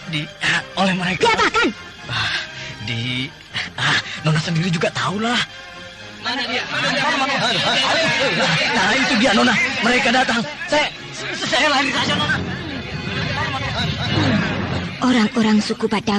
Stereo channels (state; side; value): identical; both; correlation 1.00